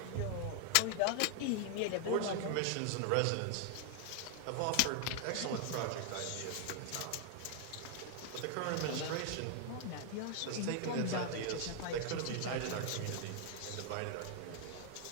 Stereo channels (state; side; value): different; both; correlation 0.00